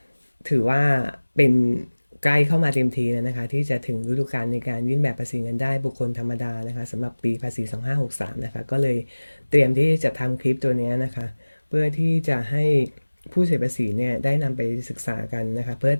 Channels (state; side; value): inverted; both; correlation -1.00